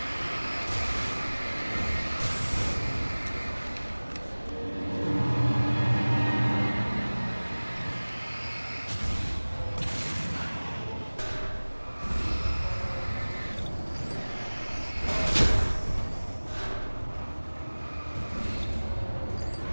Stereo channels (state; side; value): inverted; both; correlation -1.00